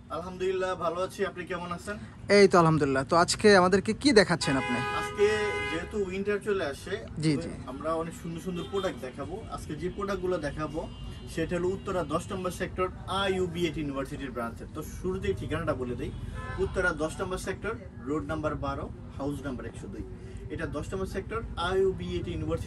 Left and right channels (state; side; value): identical; both; correlation 1.00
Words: আলহামদুলিল্লাহ ভালো আছি, আপনি কেমন আছেন? এই তো আলহামদুলিল্লাহ। তো আজকে আমাদেরকে কি দেখাচ্ছেন আপনি? আজকে যেহেতু উইন্টার চলে আসে, জি জি, আমরা অনেক সুন্দর সুন্দর প্রোডাক্ট দেখাবো। আজকে যে প্রোডাক্টগুলো দেখাবো সেটা হলো উত্তরা 10 নম্বর সেক্টর IUB8 ইউনিভার্সিটির ব্রাঞ্চে। তো শুরুতেই ঠিকানাটা বলে দেই, উত্তরা 10 নম্বর sector, road number 12, house number 102। এটা 10 নম্বর সেক্টর IUB8